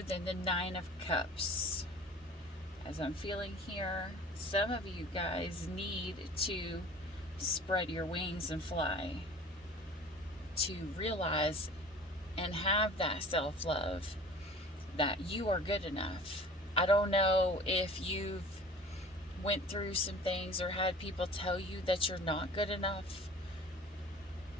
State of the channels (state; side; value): normal; both; correlation 0.44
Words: than the 9 of Cups. As I'm feeling here, some of you guys need to spread your wings and fly, to realize and have that self-love that you are good enough. I don't know if you've went through some things or had people tell you that you're not good enough.